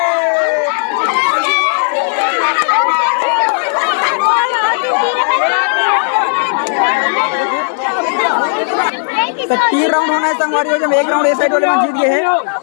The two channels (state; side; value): silent; right; digital silence